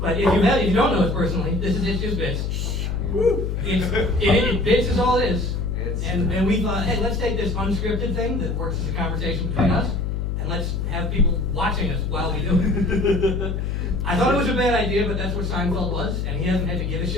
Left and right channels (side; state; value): left; noise; hum, 1 dB below the sound